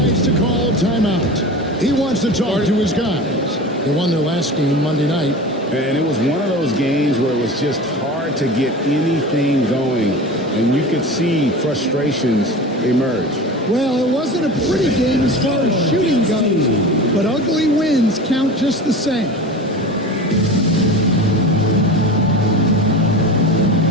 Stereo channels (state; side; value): normal; both; correlation 0.32